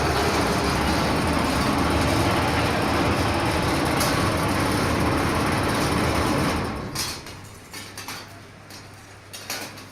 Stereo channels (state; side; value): identical; both; correlation 1.00